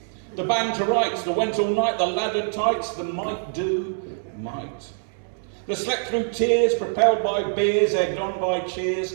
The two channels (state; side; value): silent; left; 62 dB below the other